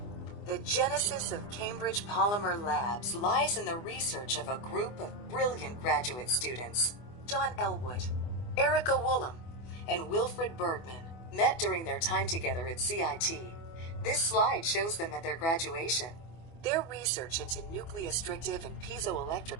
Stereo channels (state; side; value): late; right; 24 ms